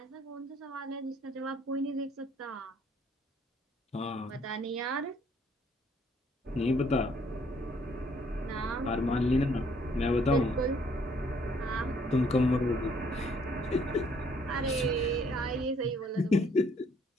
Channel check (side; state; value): both; normal; correlation 0.64